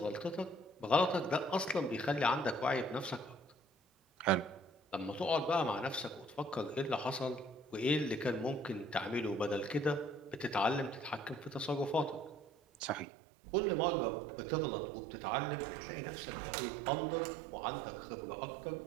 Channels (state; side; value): drops out; left; at 13.1 s